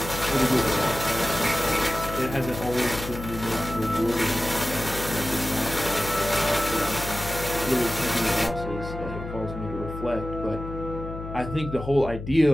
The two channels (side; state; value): left; noise; hum, 9 dB below the sound